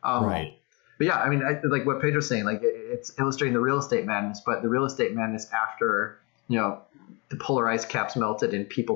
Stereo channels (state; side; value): quieter; right; 29.3 dB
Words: Right. But yeah, I mean, like what Pedro's saying, like it's illustrating the real estate madness, but the real estate madness after, the polar ice caps melted and